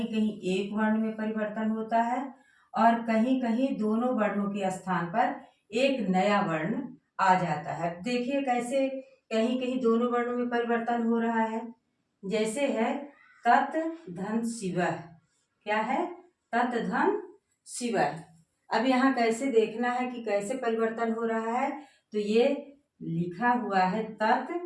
कहीं एक वर्ण में परिवर्तन होता है और कहीं कहीं दोनों वर्णों के स्थान पर एक नया वर्ण आ जाता है। देखिए कैसे कहीं कहीं दोनों वर्णों में परिवर्तन हो रहा है। जैसे है तत् धन शिवः। क्या है? तत् धन शिवः। अब यहाँ कैसे देखना है कि कैसे परिवर्तन हो रहा है। तो ये लिखा हुआ है तत्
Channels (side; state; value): both; identical; correlation 1.00